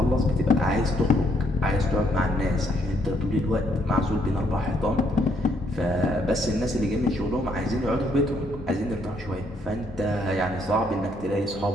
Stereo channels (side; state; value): both; normal; correlation 0.70